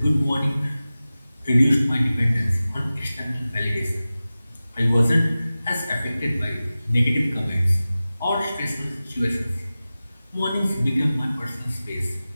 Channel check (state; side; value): inverted; both; correlation -0.96